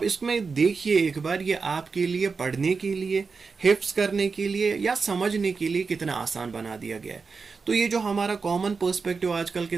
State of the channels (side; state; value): left; quieter; 4.8 dB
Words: اس میں دیکھیے ایک بار، یہ آپ کے لیے پڑھنے کے لیے، حفظ کرنے کے لیے یا سمجھنے کے لیے کتنا آسان بنا دیا گیا ہے. تو یہ جو ہمارا کامن پرسپیکٹیو آج کل